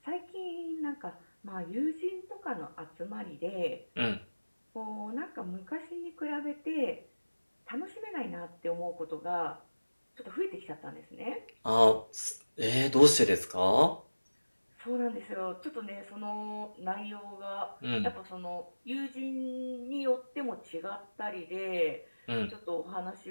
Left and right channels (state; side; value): inverted; both; correlation -1.00